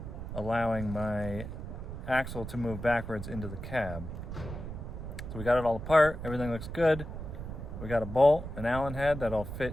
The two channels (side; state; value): right; noise; rumble, 8 dB below the sound